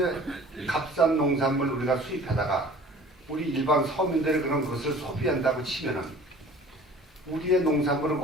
값싼 농산물 우리가 수입하다가 우리 일반 서민들이 그런 것을 소비한다고 치면은 우리의 농산물은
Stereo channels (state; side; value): normal; both; correlation 0.47